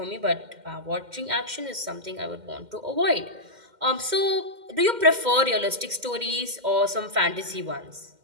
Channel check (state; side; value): late; left; 2.1 ms